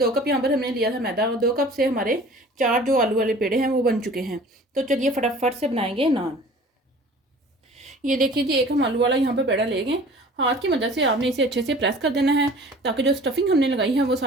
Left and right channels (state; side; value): normal; both; correlation 0.46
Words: कप यहाँ पर हमने लिया था मैदा और 2 कप से हमारे 4 जो आलू वाले पेड़े हैं वो बन चुके हैं। तो चलिए फटाफट से बनाएंगे नान। ये देखिए जी, एक हम आलू वाला यहाँ पर पेड़ा लेंगे। हाथ की मदद से आपने इसे अच्छे से प्रेस कर देना है ताकि जो स्टफिंग हमने लगाई है वो